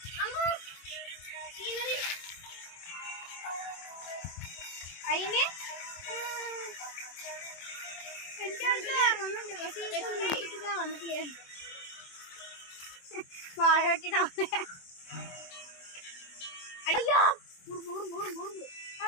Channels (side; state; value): right; late; 24 ms